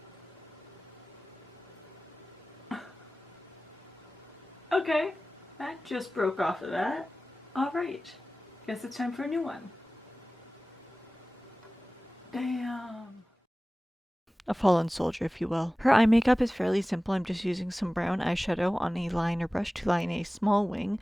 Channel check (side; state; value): both; normal; correlation 0.97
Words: Okay, that just broke off of that. Alright, guess it's time for a new one. Damn. A fallen soldier, if you will. Her eye makeup is fairly simple. I'm just using some brown eyeshadow on a liner brush to line a small wing,